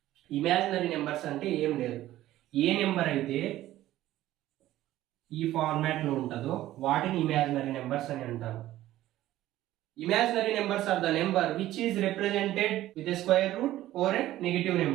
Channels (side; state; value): left; quieter; 14.6 dB